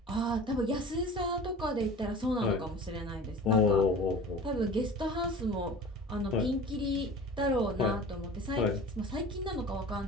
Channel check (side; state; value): both; normal; correlation 0.39